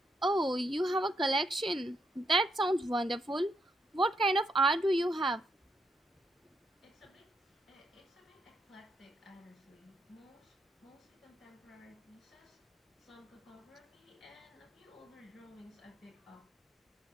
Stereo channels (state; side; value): normal; both; correlation 0.78